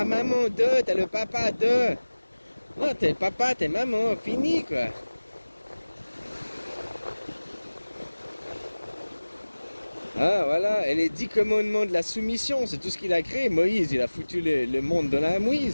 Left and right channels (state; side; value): inverted; both; correlation -1.00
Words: maman de, t'es le papa de. Non, t'es papa, t'es maman, fini, quoi. Ah, voilà, et les 10 commandements de la soumission, c'est tout ce qu'il a créé. Moïse, il a foutu le monde dans la